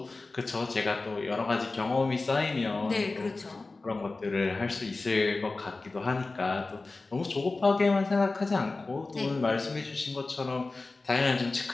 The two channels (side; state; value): right; quieter; 3.5 dB